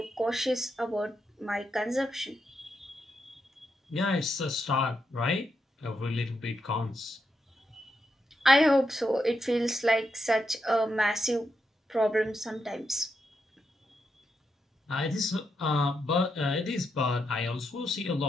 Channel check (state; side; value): normal; both; correlation 0.83